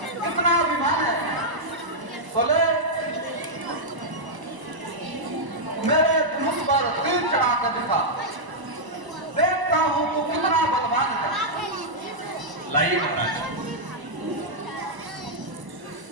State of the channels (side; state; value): left; late; 1.0 ms